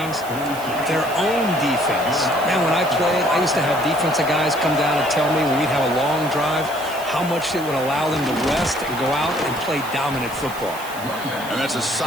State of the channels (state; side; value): noise; right; hiss, 15 dB below the sound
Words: Their own defense. Man, when I played, I used to have defensive guys come down and tell me when we'd have a long drive how much it would allow them to rest and go out and play dominant football. And that's a